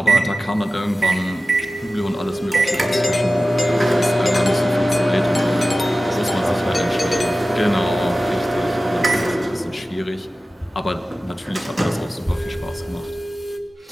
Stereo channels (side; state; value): both; normal; correlation 0.95